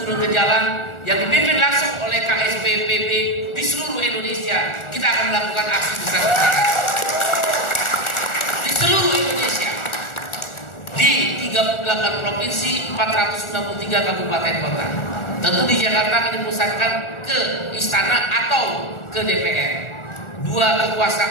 turun ke jalan yang dipimpin langsung oleh KSP PB di seluruh Indonesia. Kita akan melakukan aksi besar-besaran di seluruh Indonesia, di 38 provinsi, 463 kabupaten kota. Tentu di Jakarta akan dipusatkan ke istana atau ke DPR. 2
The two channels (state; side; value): late; right; 1.4 ms